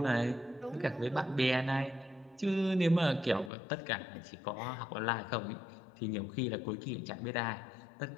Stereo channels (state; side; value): drops out; right; at 3.5 s